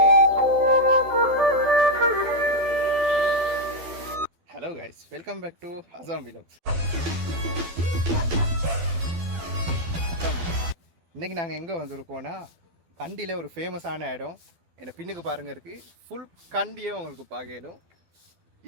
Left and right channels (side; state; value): left; late; 12 ms